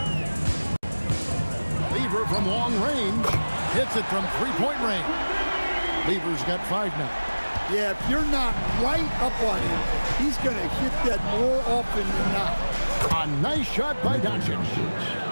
Lever from long range hits it from 3-point range. Lever's got 5 now. Yeah, if you're not right up on him, he's going to hit that more often than not. A nice shot by Doncic.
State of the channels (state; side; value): inverted; both; correlation -1.00